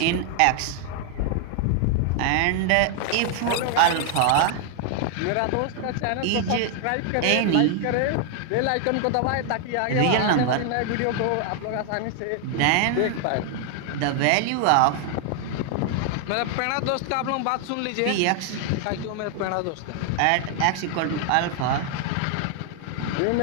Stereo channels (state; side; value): different; both; correlation 0.00